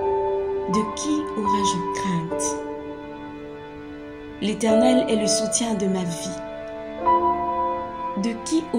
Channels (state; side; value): identical; both; correlation 1.00